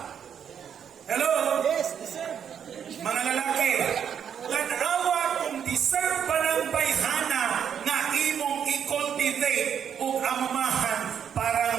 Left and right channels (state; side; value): quieter; left; 8.2 dB